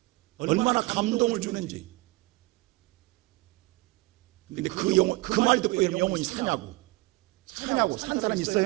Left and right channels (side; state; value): left; quieter; 21.5 dB